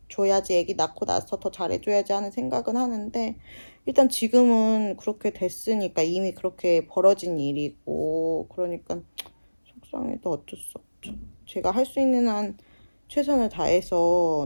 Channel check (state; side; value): inverted; both; correlation -1.00